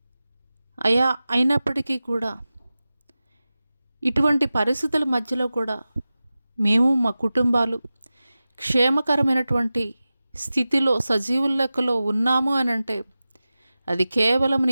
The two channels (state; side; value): inverted; both; correlation -0.95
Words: అయా, అయినప్పటికీ కూడా ఇటువంటి పరిస్థితుల మధ్యలో కూడా మేము మా కుటుంబాలు క్షేమకరమైనటువంటి స్థితిలో సజీవుల లెక్కలో ఉన్నాము అని అంటే అది కేవలం